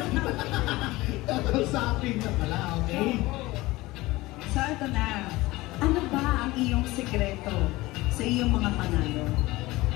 Kausapin na pala, okay? So, ito na. Ano ba ang iyong sekreto sa iyong mga panalo?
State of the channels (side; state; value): right; quieter; 19.8 dB